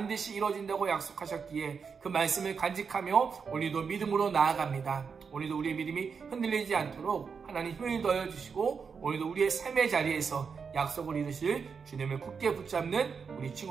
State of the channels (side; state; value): left; quieter; 5.8 dB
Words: 이루어진다고 약속하셨기에 그 말씀을 간직하며 오늘도 믿음으로 나아갑니다. 오늘도 우리의 믿음이 흔들리지 않도록 하나님 힘을 더해 주시고 오늘도 우리의 삶의 자리에서 약속을 이루실 주님을 굳게 붙잡는 우리